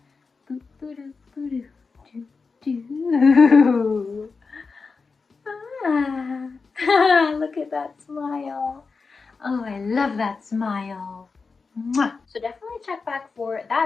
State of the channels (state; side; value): quieter; right; 4.6 dB